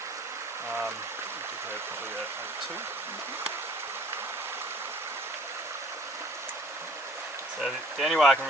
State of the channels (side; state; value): both; normal; correlation 0.53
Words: I'll give her probably a 2. So the only way I can